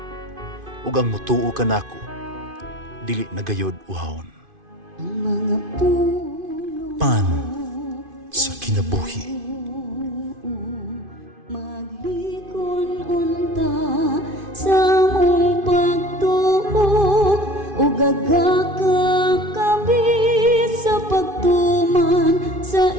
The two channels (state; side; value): late; left; 2.5 ms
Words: ug ang mutuo kanako dili nagayod uhawon." Pan sa kinabuhi. Sa mong pagtuo o gagakakabi sa pagtuman sa